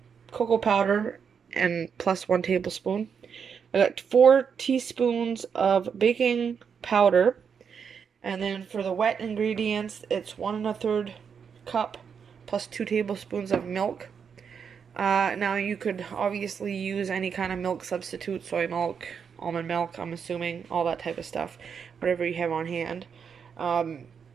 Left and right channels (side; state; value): left; quieter; 6.8 dB